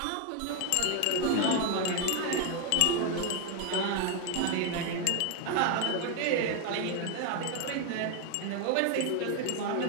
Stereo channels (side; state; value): both; different; correlation 0.01